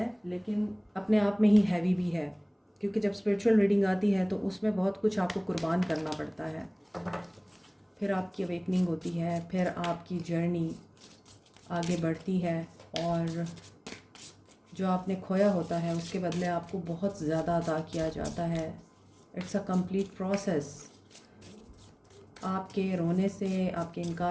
लेकिन अपने आप में ही हैवी भी है, क्योंकि जब स्पिरिचुअल रीडिंग आती है तो उसमें बहुत कुछ आपको कुर्बान करना पड़ता है। फिर आपकी अवेकनिंग होती है, फिर आपकी जर्नी आगे बढ़ती है और जो आपने खोया होता है उसके बदले आपको बहुत ज़्यादा अता किया जाता है। It's a complete process. आपके रोने से, आपके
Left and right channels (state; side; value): identical; both; correlation 1.00